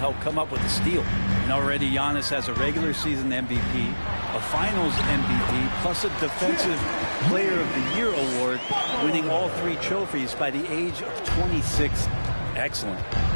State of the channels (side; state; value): both; inverted; correlation -1.00